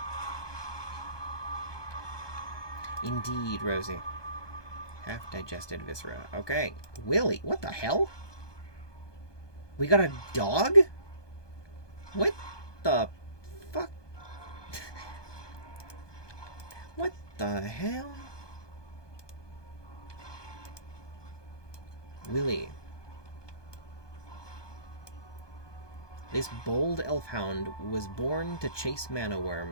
Indeed, Rosie. Half-digested viscera. Okay. Willie, what the hell? We got a dog? What the fuck? What the hell? Willie. This bold elfhound was born to chase mana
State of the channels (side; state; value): right; late; 1.2 ms